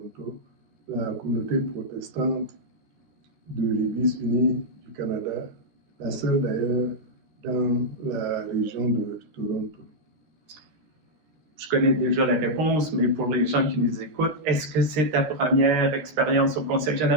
la communauté protestante de l'Église unie du Canada, la seule d'ailleurs dans la région de Toronto. Je connais déjà la réponse, mais pour les gens qui nous écoutent, est-ce que c'est ta première expérience au Conseil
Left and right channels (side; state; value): left; late; 13 ms